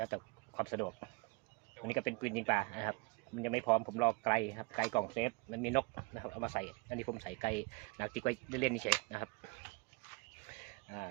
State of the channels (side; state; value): left; quieter; 27.4 dB